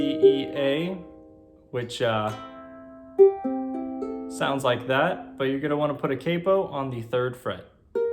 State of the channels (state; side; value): identical; both; correlation 1.00